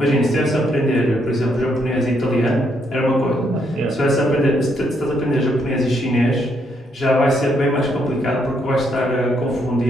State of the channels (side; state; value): both; normal; correlation 0.74